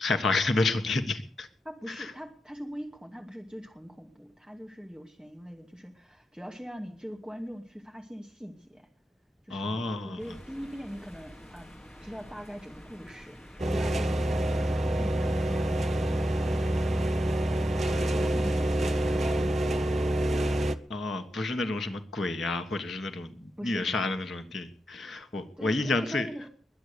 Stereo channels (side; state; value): both; normal; correlation 0.87